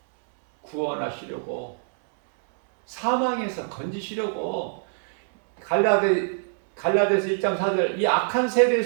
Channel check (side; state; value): left; silent; 62 dB below the other